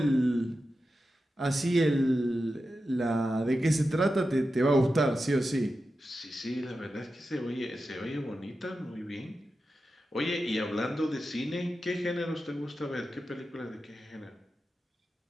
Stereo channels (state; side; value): normal; both; correlation 0.91